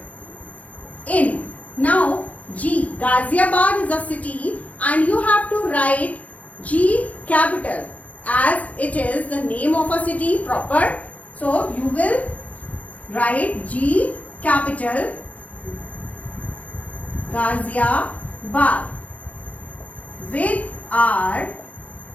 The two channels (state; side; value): late; right; 0.070 ms